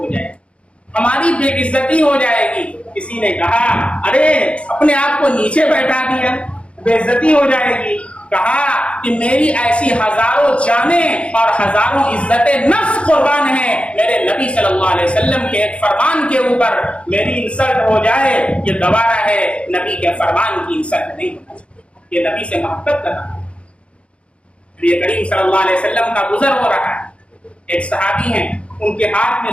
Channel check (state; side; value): late; right; 0.060 ms